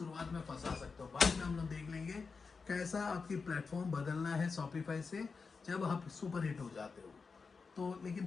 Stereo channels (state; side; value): quieter; right; 4.8 dB